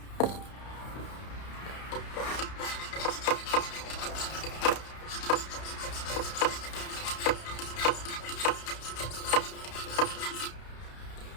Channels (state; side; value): late; right; 32 ms